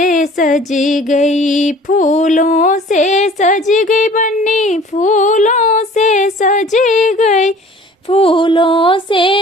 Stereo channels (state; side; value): normal; both; correlation 0.48